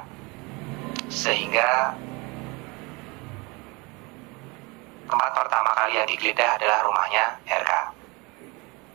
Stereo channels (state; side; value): quieter; left; 27.0 dB